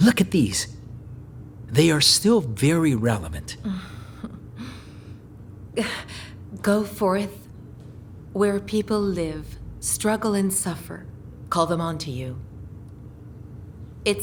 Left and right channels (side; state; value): both; identical; correlation 1.00